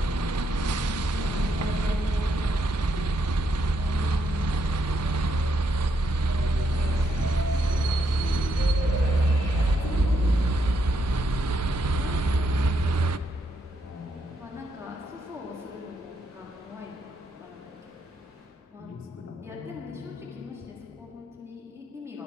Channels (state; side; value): normal; both; correlation 0.77